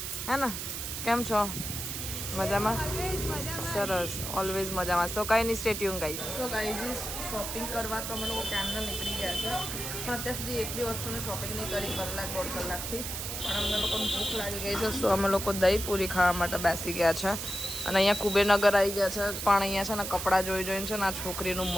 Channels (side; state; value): right; noise; hiss, 5 dB below the sound